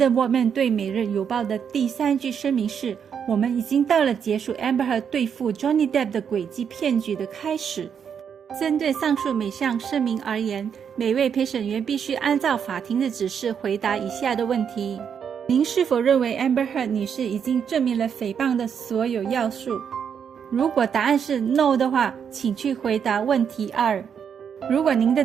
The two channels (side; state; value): left; quieter; 7.5 dB